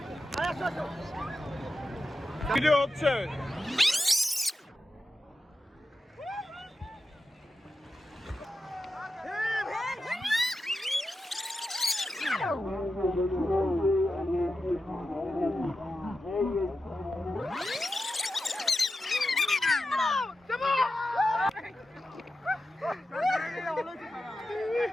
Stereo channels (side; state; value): both; normal; correlation 0.90